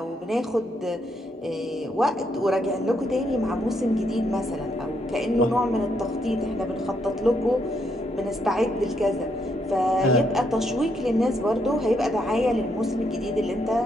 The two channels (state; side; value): normal; both; correlation 0.76